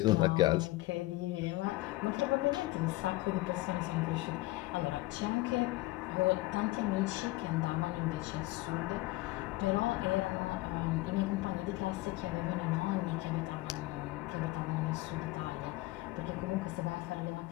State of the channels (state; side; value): quieter; right; 19.3 dB